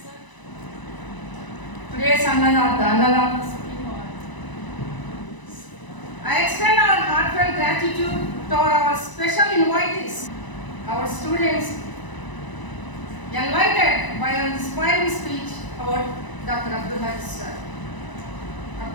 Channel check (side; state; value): right; late; 1.0 ms